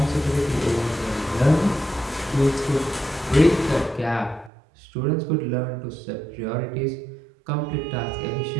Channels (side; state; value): left; drops out; at 4.5 s